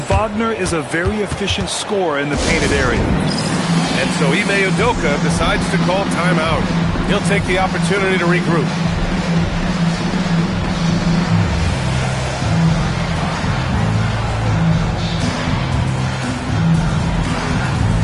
Wagner is a very efficient scorer in the painted area. And so Ime Udoka decides to call timeout. He'll take the opportunity to regroup.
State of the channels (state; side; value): identical; both; correlation 1.00